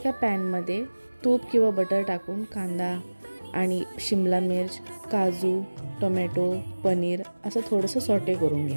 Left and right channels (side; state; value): both; inverted; correlation -1.00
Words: पॅनमध्ये तूप किंवा बटर टाकून कांदा आणि शिमला मिर्च, काजू, टोमॅटो, पनीर असं थोडंसं सॉटे करून